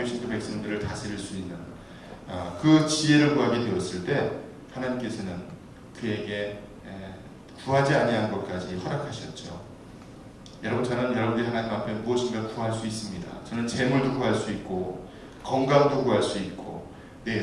그 백성들을 다스릴 수 있는 그 지혜를 구하게 되었을 때 하나님께서는 그에게 구하지 아니한 것까지 허락하셨죠. 여러분, 저는 여러분들이 하나님 앞에 무엇인가 구할 수 있습니다. 저는 재물도 구할 수 있고 건강도 구할 수 있고 내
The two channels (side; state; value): both; identical; correlation 1.00